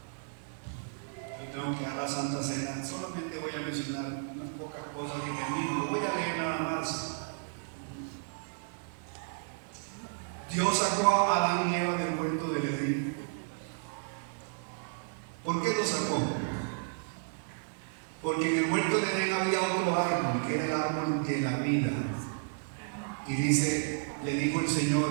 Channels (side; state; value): left; silent; digital silence